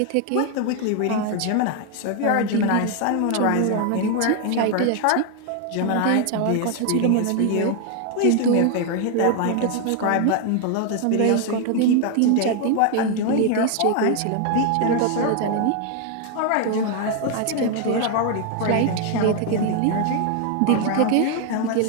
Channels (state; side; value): different; both; correlation 0.00